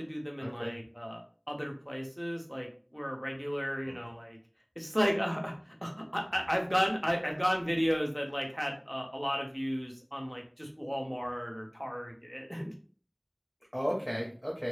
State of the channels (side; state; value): both; identical; correlation 1.00